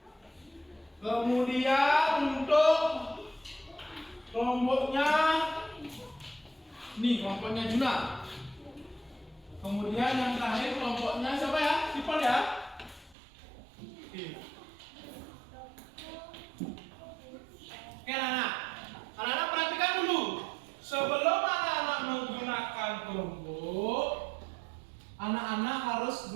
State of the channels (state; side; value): drops out; left; at 13.2 s